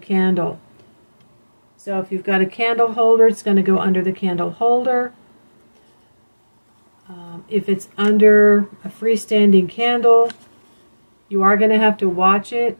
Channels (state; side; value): inverted; both; correlation -1.00